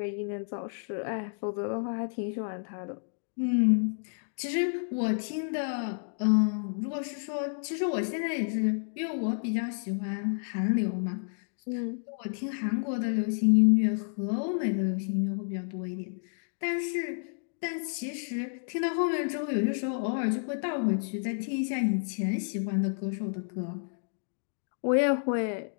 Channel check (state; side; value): silent; right; digital silence